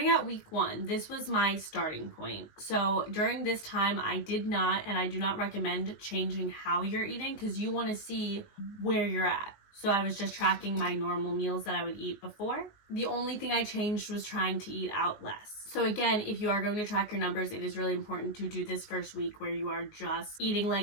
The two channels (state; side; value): late; right; 19 ms